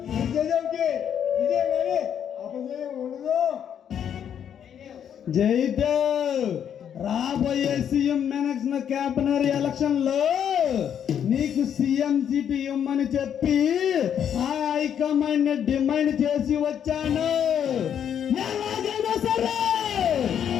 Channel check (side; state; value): right; quieter; 8.8 dB